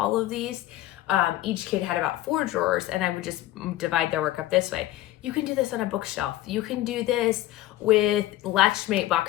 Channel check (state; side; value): quieter; right; 15.3 dB